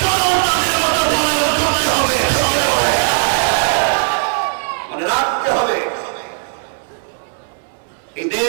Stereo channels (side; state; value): left; silent; 64 dB below the other